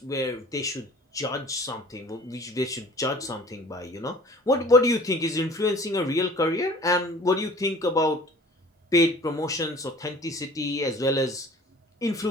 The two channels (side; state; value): both; normal; correlation 0.47